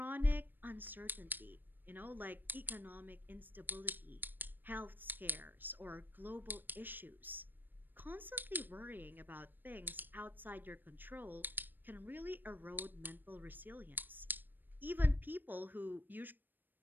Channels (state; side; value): late; left; 0.092 ms